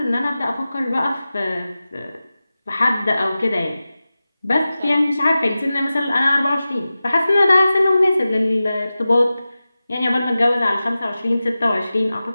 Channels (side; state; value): both; inverted; correlation -0.95